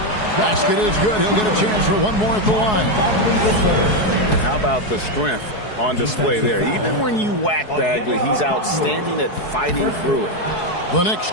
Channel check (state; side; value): late; right; 4.7 ms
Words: Basket is good. He'll get a chance for one more at the line. And how about the strength on display there? Even when you whack Bagley, he's outstanding at fighting through it. The Knicks